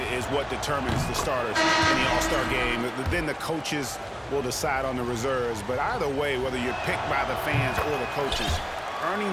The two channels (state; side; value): identical; both; correlation 1.00